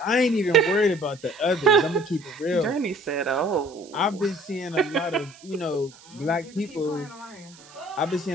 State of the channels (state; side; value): noise; right; hiss, 23 dB below the sound